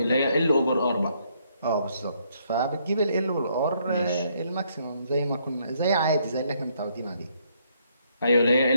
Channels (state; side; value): inverted; both; correlation -0.71